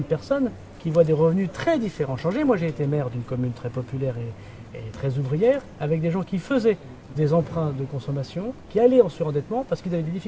personnes qui voient des revenus très différents changer. Moi, j'ai été maire d'une commune très populaire et très ouvrière, avec des gens qui faisaient des emprunts de consommation, qui allaient en surendettement parce qu'ils avaient des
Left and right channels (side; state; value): both; identical; correlation 1.00